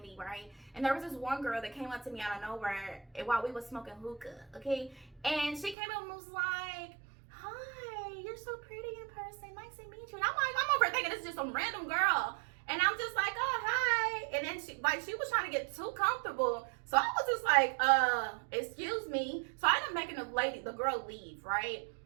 right? And there was this one girl that came up to me out of nowhere while we was smoking hookah, okay? And she came up and was like, hi, you're so pretty in person, nice to meet you. And I'm like, I'm over thinking this is just some random girl. And I'm just like, oh, hi. And then she was trying to get too comfortable. So I was just like, excuse me. So I ended up making the girl leave, right?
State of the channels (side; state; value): left; drops out; at 5.8 s